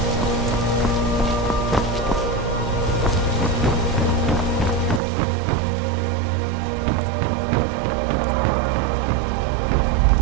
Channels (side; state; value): left; drops out; at 5.0 s